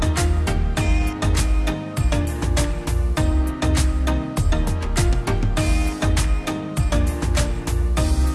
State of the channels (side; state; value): both; identical; correlation 1.00